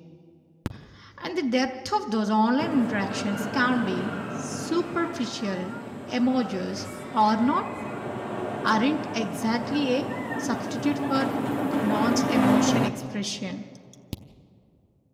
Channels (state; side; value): identical; both; correlation 1.00